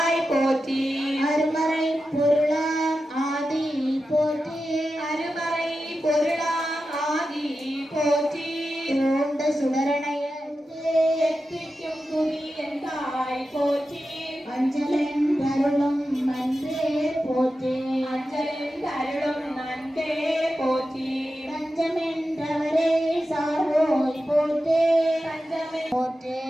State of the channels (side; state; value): both; normal; correlation 0.91